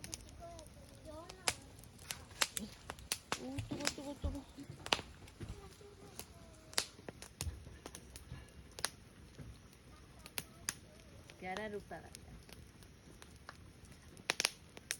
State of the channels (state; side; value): identical; both; correlation 1.00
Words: 찍어야 돼. 연아. 오, 뜨거. 갸라루빠 같다.